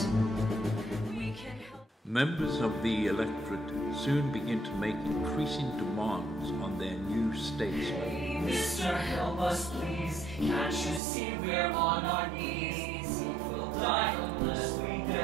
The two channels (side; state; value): left; drops out; at 11.0 s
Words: Members of the electorate soon begin to make increasing demands on their new statesman. Mister, help us please. Can't you see we're on our knees? We'll die unless we